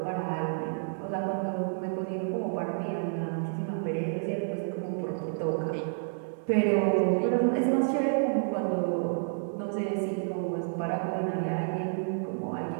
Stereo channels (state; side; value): silent; left; 58 dB below the other